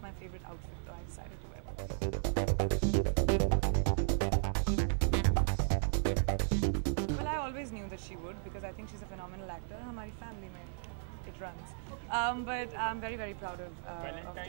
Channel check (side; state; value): left; silent; 54 dB below the other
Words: my favourite outfit, तो I decided to wear. I always knew that she would, because I think she's a phenomenal actor. हमारी family में it runs. But I'm very very proud of